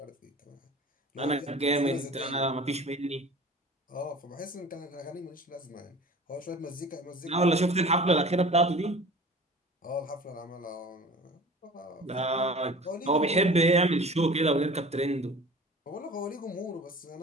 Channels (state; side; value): normal; both; correlation 0.42